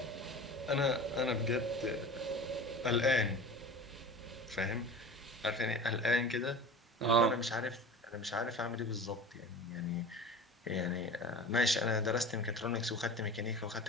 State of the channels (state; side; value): normal; both; correlation 0.36